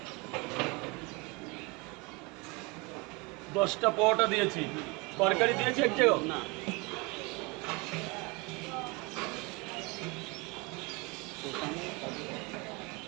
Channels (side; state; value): left; quieter; 27.5 dB